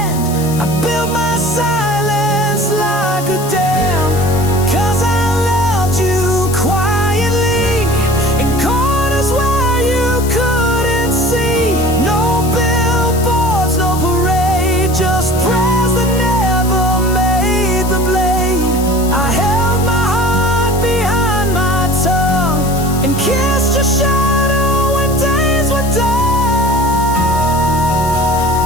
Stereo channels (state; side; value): noise; left; hiss, 12 dB below the sound